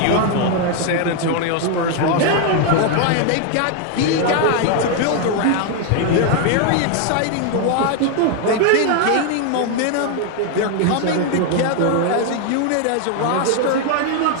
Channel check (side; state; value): both; different; correlation 0.00